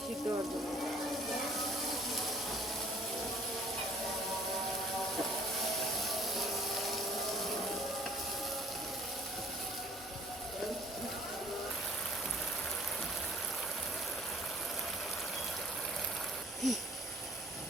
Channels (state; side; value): normal; both; correlation 0.55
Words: সিদ্ধ হওয়ার জন্য।